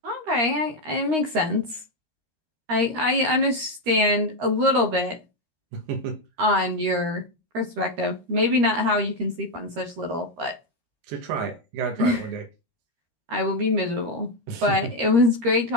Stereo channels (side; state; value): left; late; 13 ms